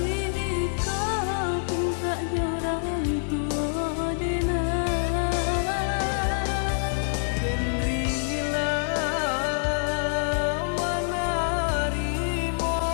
kau pintanya orang tua denai. Den rila menerimo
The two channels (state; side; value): silent; right; 61 dB below the other